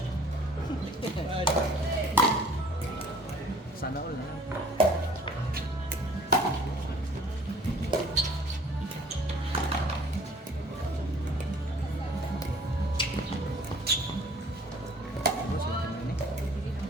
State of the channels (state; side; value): normal; both; correlation 0.53